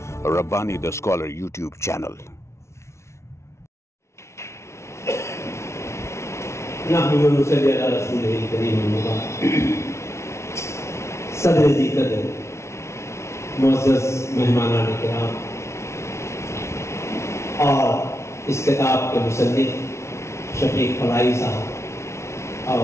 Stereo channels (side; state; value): right; late; 0.13 ms